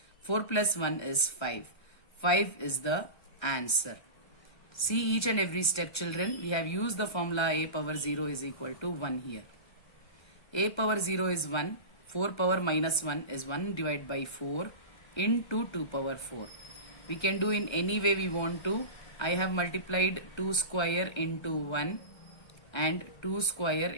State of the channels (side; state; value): right; late; 1.3 ms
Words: 4 plus 1 is 5. 5 is the answer. See each and every step, children. We have used the formula a power 0 is equal to 1 here. A power 0 is 1. 4 power minus 1 is 1 divided by 4 into 2 power 4. We can do in any way we want to. I have multiplied 2 square into 1 and 2 square